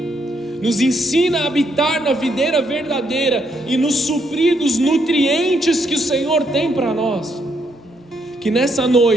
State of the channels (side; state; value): both; normal; correlation 0.75